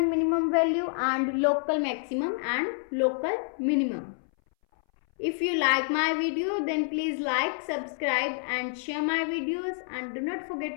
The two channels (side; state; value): right; silent; 59 dB below the other